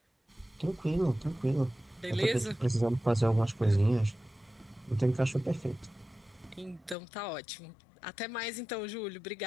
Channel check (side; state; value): right; drops out; at 7.0 s